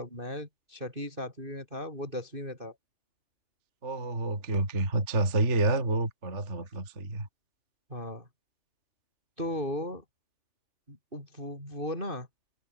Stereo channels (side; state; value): left; late; 3.3 ms